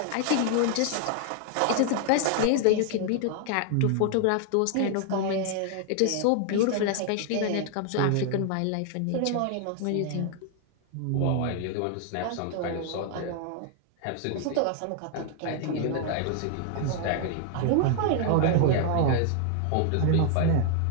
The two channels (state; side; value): different; both; correlation 0.00